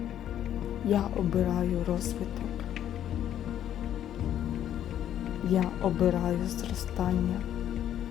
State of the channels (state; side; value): quieter; right; 10.8 dB